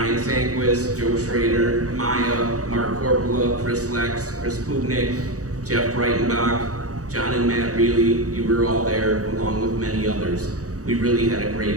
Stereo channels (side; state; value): left; late; 0.66 ms